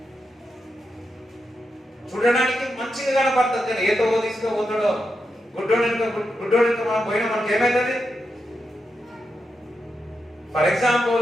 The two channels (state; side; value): normal; both; correlation 0.86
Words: చూడడానికి మంచిగా కనపడుతుంది, కానీ ఏదో తీసుకుపోతాడో గుడ్డోడు మనం పోయినా మనకి ఏమైతుంది? ఫర్